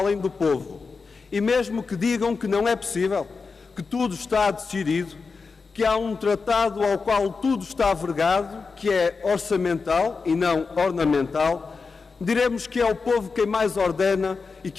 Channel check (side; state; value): right; quieter; 4.7 dB